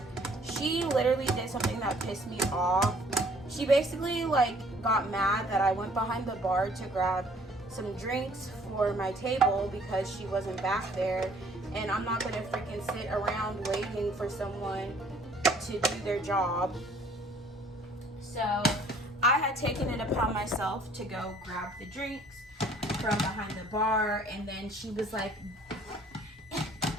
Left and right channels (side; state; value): both; normal; correlation 0.58